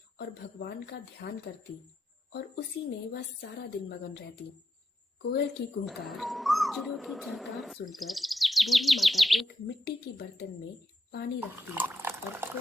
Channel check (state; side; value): normal; both; correlation 0.84